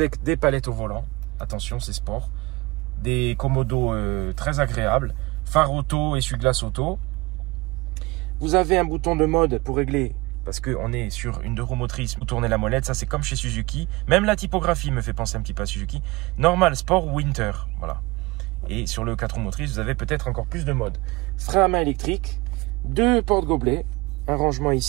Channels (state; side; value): quieter; left; 23.5 dB